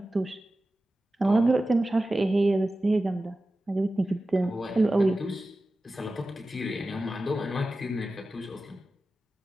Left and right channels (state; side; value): normal; both; correlation 0.94